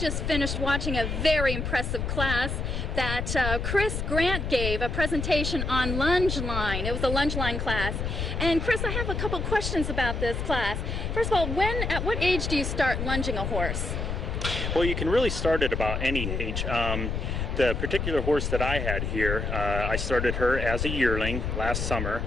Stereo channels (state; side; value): noise; left; rumble, 2 dB below the sound